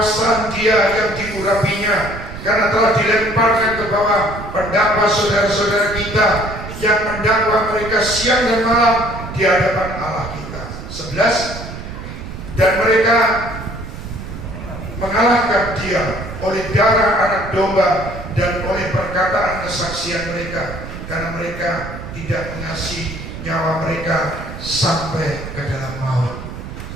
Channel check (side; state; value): right; noise; rumble, 10 dB below the sound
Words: Dia yang diurapinya, karena telah dilemparkan ke bawah pendakwa saudara-saudara kita yang mendakwa mereka siang dan malam di hadapan Allah kita. 11. Dan mereka mengalahkan Dia oleh darah anak domba dan oleh perkataan perkataan kesaksian mereka, karena mereka tidak mengasihi nyawa mereka sampai ke dalam maut.